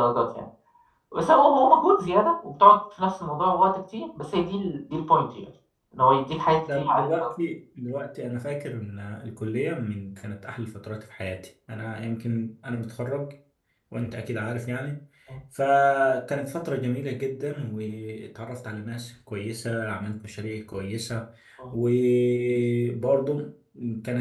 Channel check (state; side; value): identical; both; correlation 1.00